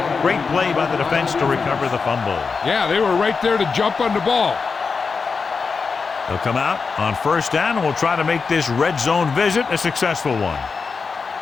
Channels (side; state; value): right; quieter; 5.0 dB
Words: Great play by the defense to recover the fumble. Yeah, they were right there to jump on the ball. They'll come out on 1st down and will try to make this red zone visit a successful one.